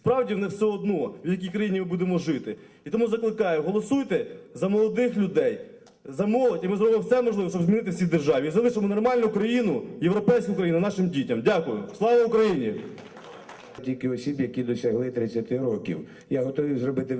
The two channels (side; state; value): both; identical; correlation 1.00